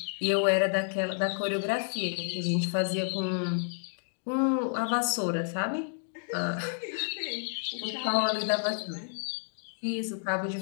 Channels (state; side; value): silent; right; digital silence